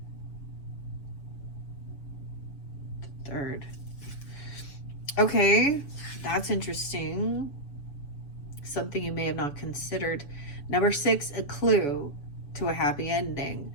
The third. Okay, that's interesting. Something you may have not considered. Number 6, a clue to a happy ending.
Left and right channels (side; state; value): right; late; 7.1 ms